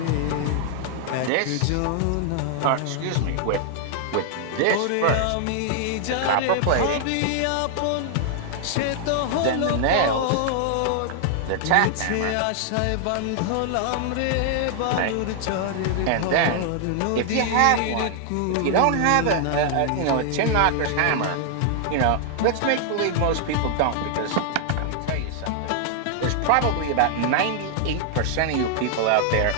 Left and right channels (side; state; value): both; different; correlation 0.00